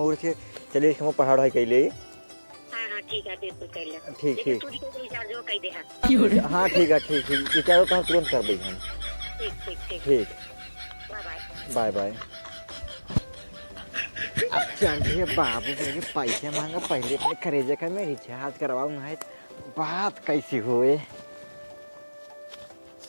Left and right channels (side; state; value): both; inverted; correlation -1.00